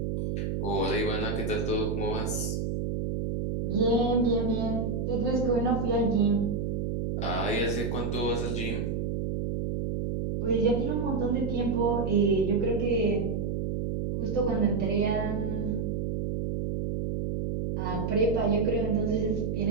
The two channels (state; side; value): noise; right; hum, 1 dB below the sound